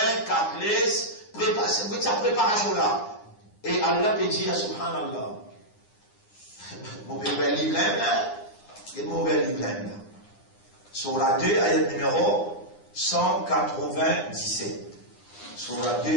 4 laisses, préparez sa préparation là. Et Allah peut dire, subhanallah, mon bel livre là, et mon bel livre là. Sur la 2, ayat numéro 197. Sur la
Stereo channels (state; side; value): late; right; 9.8 ms